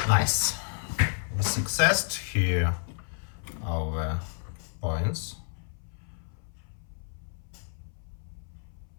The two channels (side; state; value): right; silent; 57 dB below the other